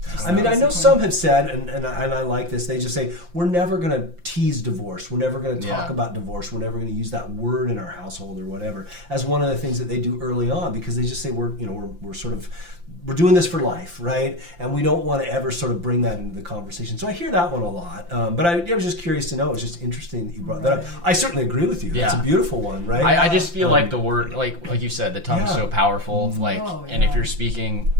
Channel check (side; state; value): left; late; 5.8 ms